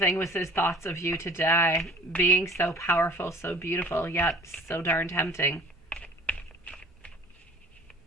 with his thoughts of you today, being so powerful, so beautiful, yet so darn tempting.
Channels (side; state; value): both; normal; correlation 0.48